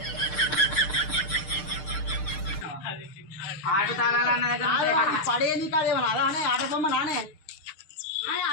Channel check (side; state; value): right; late; 6.6 ms